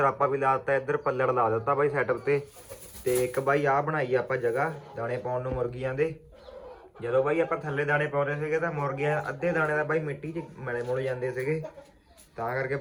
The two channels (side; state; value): both; identical; correlation 1.00